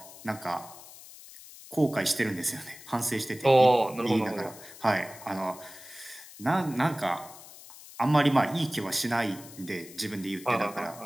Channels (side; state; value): left; noise; hiss, 18 dB below the sound